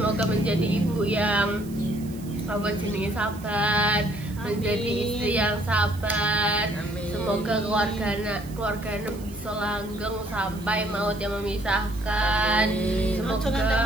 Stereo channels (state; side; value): noise; right; hiss, 21 dB below the sound